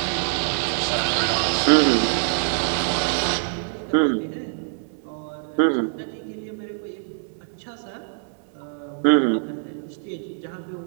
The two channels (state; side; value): silent; left; digital silence